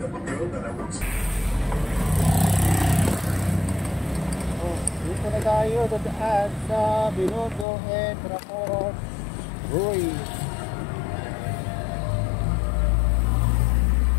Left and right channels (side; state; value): right; drops out; at 7.7 s